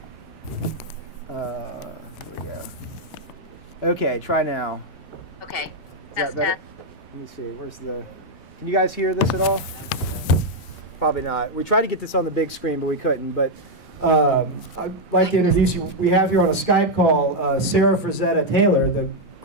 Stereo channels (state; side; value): normal; both; correlation 0.00